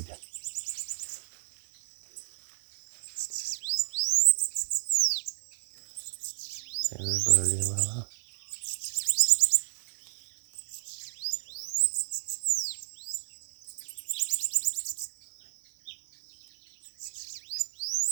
Pega por ali, vai lá.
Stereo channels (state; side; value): silent; left; digital silence